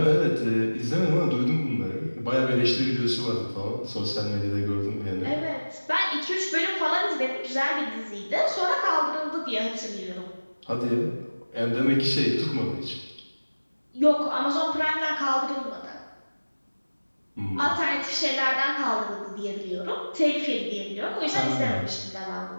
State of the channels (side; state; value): both; inverted; correlation -1.00